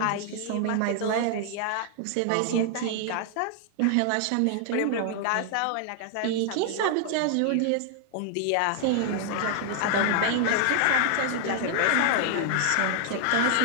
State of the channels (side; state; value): both; different; correlation 0.00